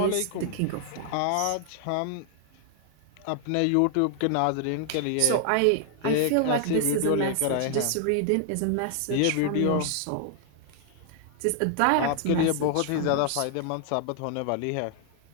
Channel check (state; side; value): different; both; correlation 0.00